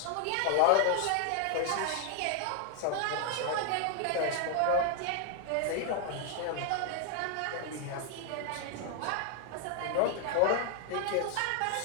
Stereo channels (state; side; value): different; both; correlation 0.00